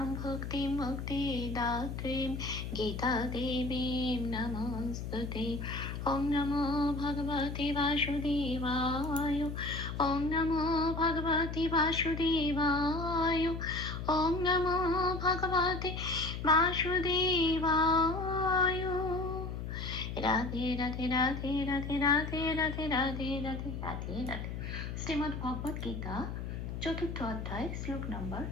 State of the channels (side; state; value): left; noise; hum, 6 dB below the sound